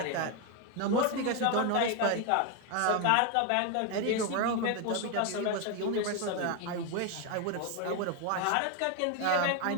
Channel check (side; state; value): both; different; correlation 0.01